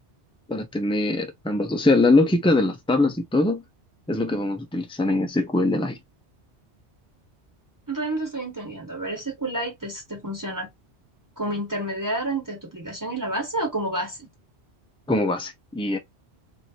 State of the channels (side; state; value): both; normal; correlation 0.59